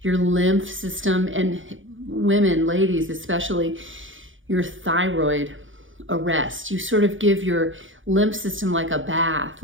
your lymph system, and women, ladies especially, your thyroid a rest. You sort of give your lymph system like a bath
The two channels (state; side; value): late; left; 0.57 ms